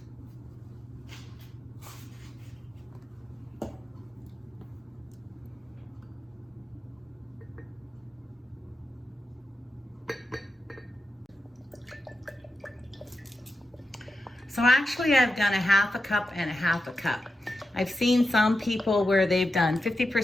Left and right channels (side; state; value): both; normal; correlation 0.90